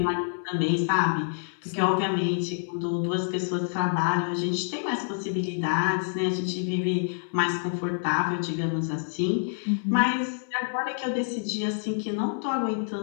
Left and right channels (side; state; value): right; silent; 60 dB below the other